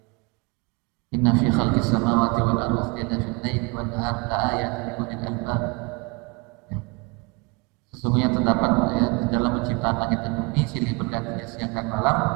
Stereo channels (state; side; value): quieter; left; 27.9 dB